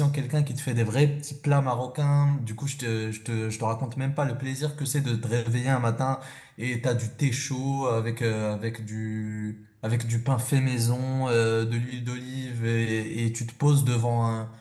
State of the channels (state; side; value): identical; both; correlation 1.00